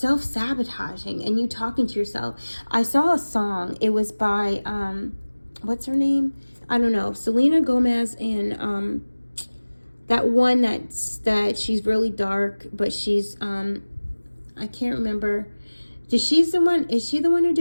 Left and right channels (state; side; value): inverted; both; correlation -1.00